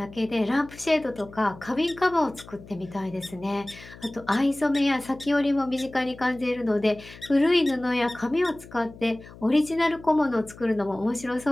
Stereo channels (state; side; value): noise; left; hum, 19 dB below the sound